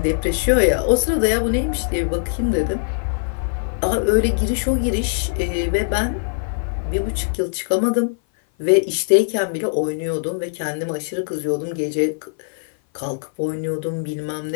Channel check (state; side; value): silent; right; 56 dB below the other